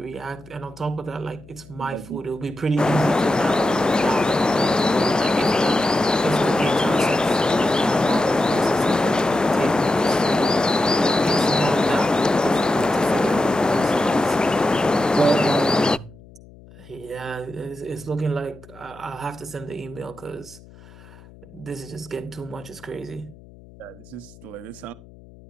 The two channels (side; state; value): left; noise; hum, 22 dB below the sound